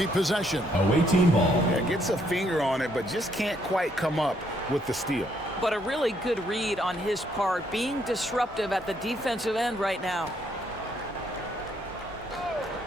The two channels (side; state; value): both; normal; correlation 0.71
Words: possession. Away team ball. Yeah, gets a finger on it, but just can't quite come up with the steal. But a really good read on his part, being disruptive at the defensive end right now.